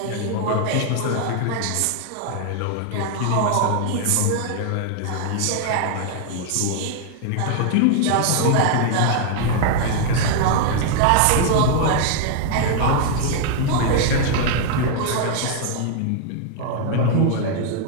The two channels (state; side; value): different; both; correlation 0.00